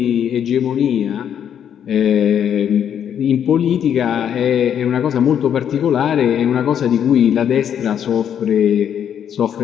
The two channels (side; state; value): right; quieter; 8.9 dB